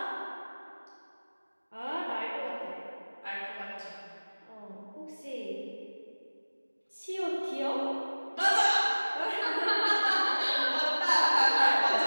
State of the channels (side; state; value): both; inverted; correlation -1.00